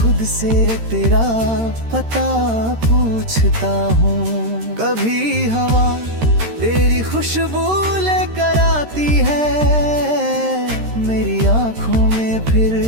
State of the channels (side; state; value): left; late; 13 ms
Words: से तेरा पता पूछता हूँ। कभी हवा तेरी खुशबू लेकर आती है, मेरी आँखों में फिर